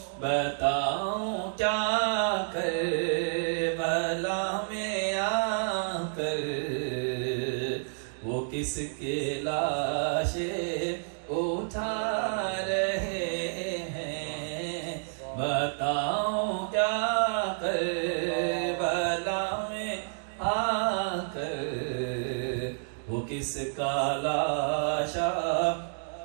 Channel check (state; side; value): silent; left; digital silence